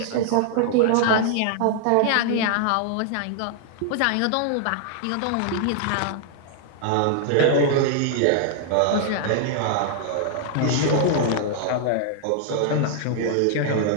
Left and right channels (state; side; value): different; both; correlation 0.00